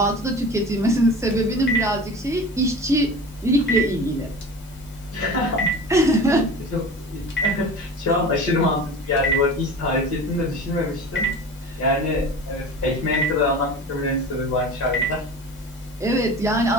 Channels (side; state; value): both; normal; correlation 0.36